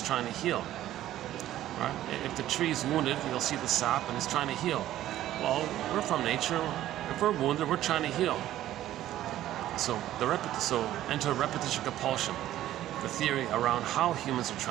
trying to heal. Right? If the tree's wounded, you'll see the sap, and it's trying to heal. Well, we're from nature. If we're wounded, we're trying to heal. So enter repetition compulsion, the theory around how humans are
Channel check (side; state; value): left; quieter; 13.4 dB